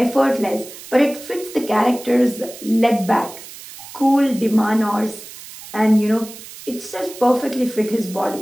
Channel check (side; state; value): right; noise; hiss, 15 dB below the sound